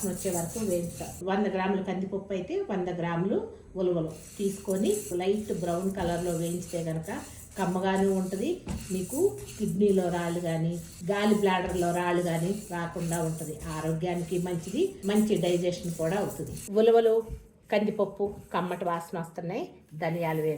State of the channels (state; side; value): identical; both; correlation 1.00